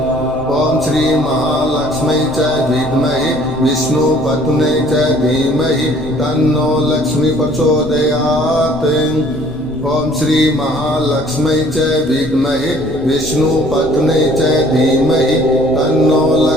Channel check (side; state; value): left; noise; rumble, 16 dB below the sound